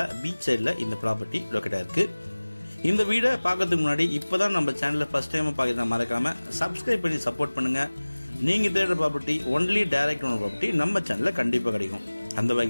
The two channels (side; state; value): both; inverted; correlation -1.00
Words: பீச் சைடில் இந்த ப்ராப்பர்ட்டி லொக்கேட்டாக இருக்குது. இந்த வீடை பார்க்கறதுக்கு முன்னாடி இப்போ தான் நம்ம சேனலில் ஃபஸ்ட் டைம் பார்க்குறதா மறக்காமல் சப்ஸ்கிரைப் பண்ணி சப்போர்ட் பண்ணுங்கள். நீங்கள் தேடுற property only direct owner property நம்ம சேனலில் கண்டிப்பாக கிடைக்கும். அந்த